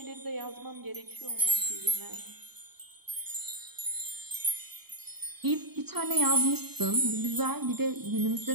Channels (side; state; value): left; late; 0.97 ms